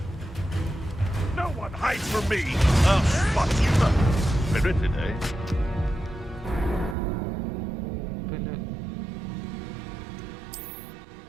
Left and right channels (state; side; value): drops out; left; at 7.0 s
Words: No one hides from me! I'll spot you! Spirited, eh?